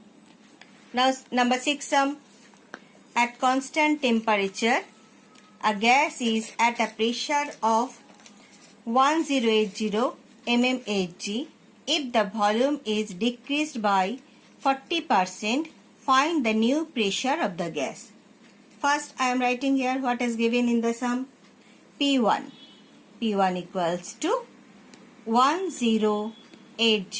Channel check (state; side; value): identical; both; correlation 1.00